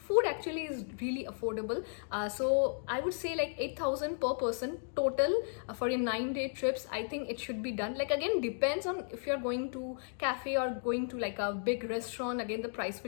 actually is really affordable. So I would say like 8,000 per person total for your 9-day trips. I think it should be done. Like, again, depends on if you're going to cafe or going to like a big restaurant, again the price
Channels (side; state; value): right; silent; digital silence